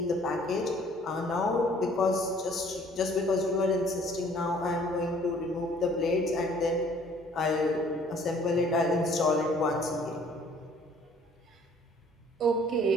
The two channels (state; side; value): normal; both; correlation 0.57